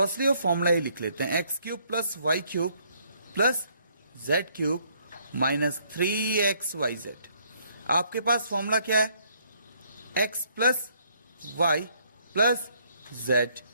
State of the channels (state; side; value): inverted; both; correlation -0.67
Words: वो फॉर्मूला ही लिख लेते हैं, x cube plus y cube plus z cube minus 3xyz। आपके पास फॉर्मूला क्या है, x plus y plus z